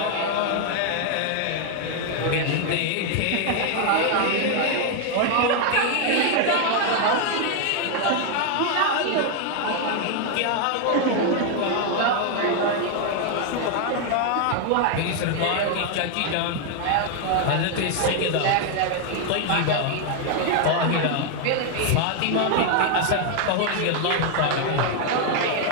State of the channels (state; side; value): different; both; correlation 0.01